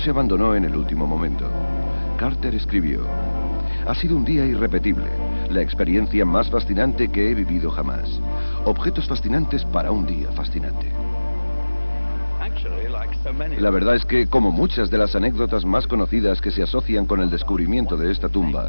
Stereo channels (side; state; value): both; inverted; correlation -1.00